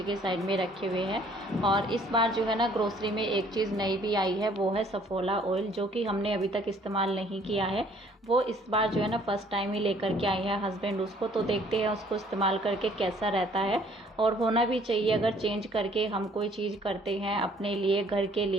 के साइड में रखे हुए हैं। और इस बार जो है ना ग्रोसरी में एक चीज़ नई भी आई है, वो है सफोला ऑयल, जो कि हमने अभी तक इस्तेमाल नहीं किया है। वो इस बार जो है ना फर्स्ट टाइम ही लेकर के आई है हस्बैंड उसको, तो देखते हैं उसको इस्तेमाल करके कैसा रहता है। और होना भी चाहिए, अगर चेंज करके हम कोई चीज़ करते हैं अपने लिए, घर के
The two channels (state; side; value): normal; both; correlation 0.59